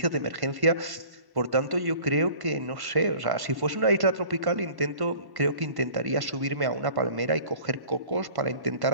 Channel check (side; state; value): left; late; 1.1 ms